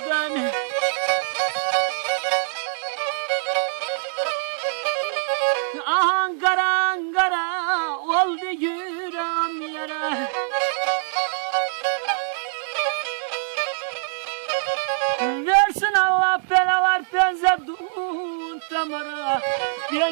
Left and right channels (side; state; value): left; silent; digital silence